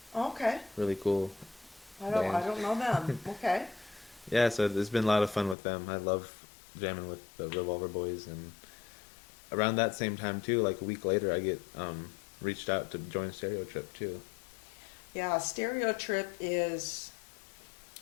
Okay. Really cool I band. don't know them. Okay. Yeah, so it's been a lot of fun with them. I love jamming with the Revolver Boys, and around that same time too, like a week later, I get reached out to join Stereo Trip too. Yeah, Stereo Trip is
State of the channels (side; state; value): right; drops out; at 5.6 s